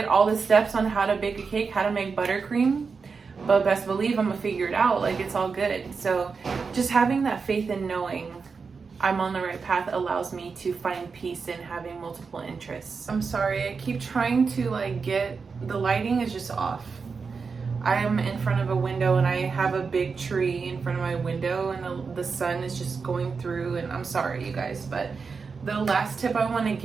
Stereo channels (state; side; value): quieter; left; 5.1 dB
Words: all the steps on how to bake a cake, how to make buttercream, but best believe I'm gonna figure it out. Like, it's all good. So just having that faith and knowing I'm on the right path allows me to find peace in having multiple interests. I'm sorry, I keep trying to the lighting is just off. I am in front of a window and I have a big tree in front of my window and the sun is just going through, and I'm sorry you guys, but the last tip I want to